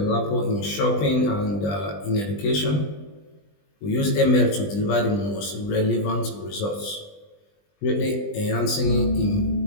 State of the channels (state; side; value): late; right; 20 ms